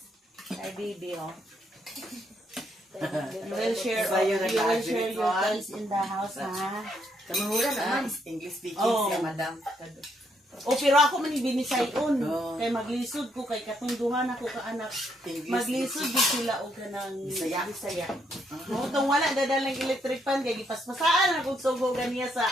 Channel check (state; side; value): normal; both; correlation 0.74